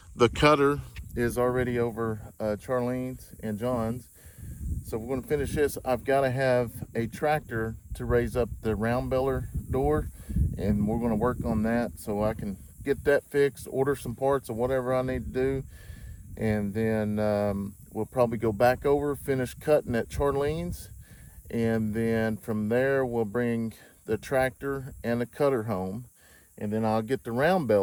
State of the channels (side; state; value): both; identical; correlation 1.00